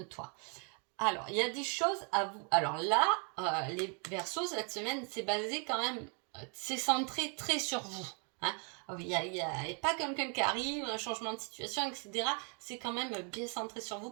Alors, il y a des choses à vous... Alors là, les Verseaux, cette semaine, c'est basé quand même... c'est centré très sur vous. Hein. Il n'y a pas quelqu'un qui arrive, un changement de situation, etc. C'est quand même bien centré sur vous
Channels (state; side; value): quieter; left; 38.5 dB